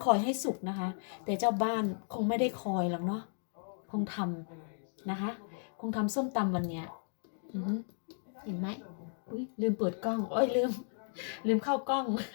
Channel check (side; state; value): right; silent; digital silence